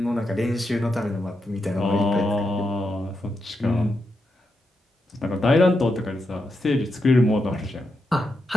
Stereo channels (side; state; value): both; normal; correlation 0.85